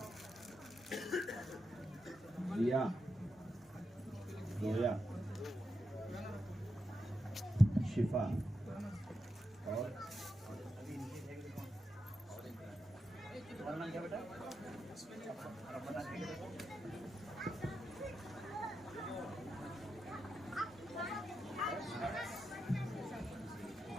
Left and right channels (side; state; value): both; normal; correlation 0.88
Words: रिया जोया शिफा और